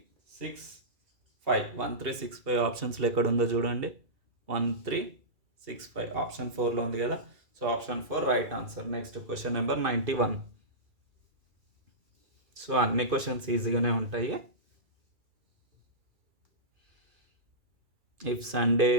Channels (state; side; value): late; left; 2.3 ms